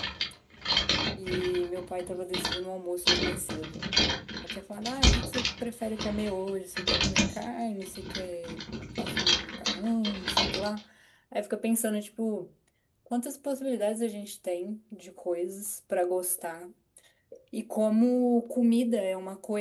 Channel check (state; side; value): identical; both; correlation 1.00